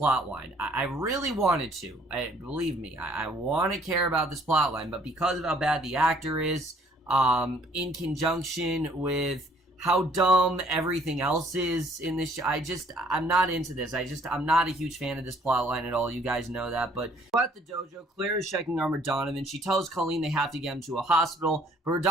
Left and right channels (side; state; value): both; normal; correlation 0.61